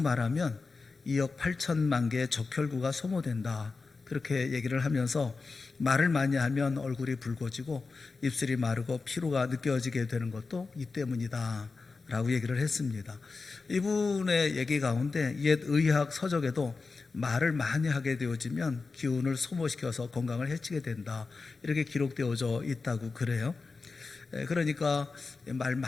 2억 8천만 개의 적혈구가 소모된다, 그렇게 얘기를 하면서 말을 많이 하면 얼굴이 붉어지고 입술이 마르고 피로가 느껴지게 되는 것도 이 때문이다 라고 얘기를 했습니다. 이분의 얘기 가운데 옛 의학 서적에도 말을 많이 하게 되어지면 기운을 소모시켜서 건강을 해치게 된다, 이렇게 기록되어져 있다고 그래요. 그러니까 말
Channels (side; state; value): right; quieter; 4.2 dB